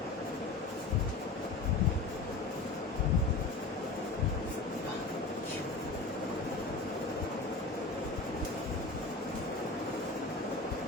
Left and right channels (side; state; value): right; quieter; 3.6 dB